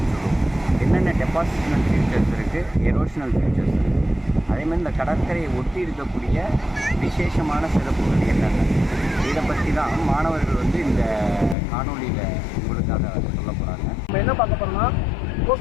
சொல்லுவோம். என்னென்ன டெபாசிஷனல் ஃபியூச்சர்ஸ் இருக்குது, எரோஷனல் ஃபியூச்சர்ஸ் இருக்குது. அதேமாதிரி இந்த கடற்கரையை ஒட்டி இருக்கக்கூடிய விசேஷமான சிறப்புகள் என்னென்ன, இதை பற்றி தான் மாணவர்கள் இந்த காணொலியில் உங்களுக்காக சொல்ல போகிறாங்க. நம்ம என்ன பார்க்க போகிறோம்னா,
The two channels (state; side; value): drops out; right; at 11.6 s